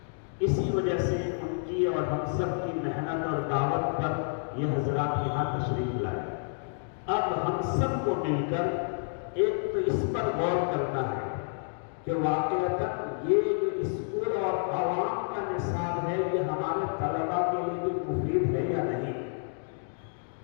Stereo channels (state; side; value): silent; right; digital silence